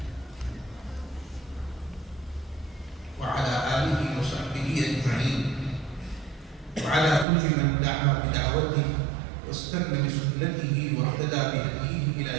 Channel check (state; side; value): drops out; left; at 7.2 s